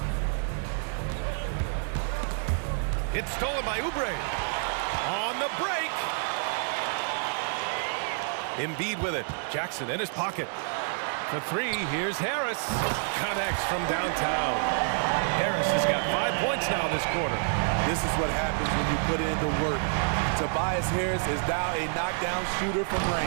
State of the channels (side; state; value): left; silent; 59 dB below the other